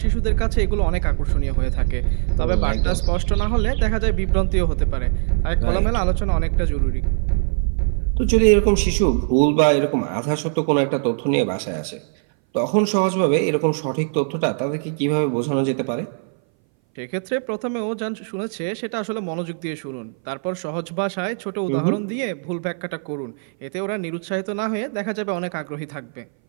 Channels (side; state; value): left; silent; 61 dB below the other